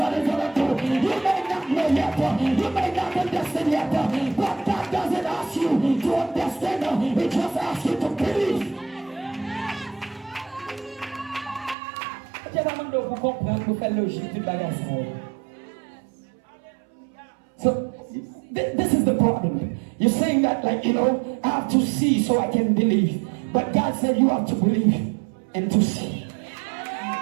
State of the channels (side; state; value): left; drops out; at 11.8 s